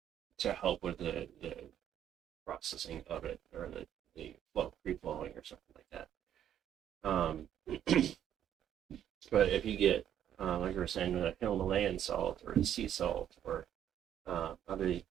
to help with the processing of it or the free flowing or something like that. But if you get like we were saying, the Himalayan salt or the sea salt or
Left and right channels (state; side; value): quieter; left; 10.3 dB